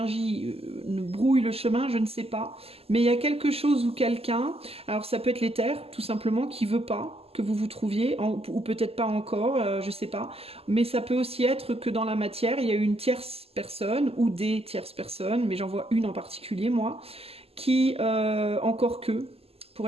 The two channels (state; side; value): late; left; 0.29 ms